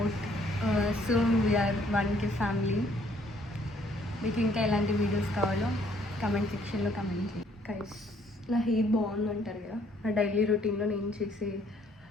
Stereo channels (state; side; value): normal; both; correlation 0.64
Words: Soon we are 1K family. మీకు ఇంకా ఎలాంటి videos కావాలో comment సెక్షన్లో comment చేయండి. Guys, నా హెయిర్ బాగుందంటారు కదా, నా డైలీ రొటీన్లో నేను చేసే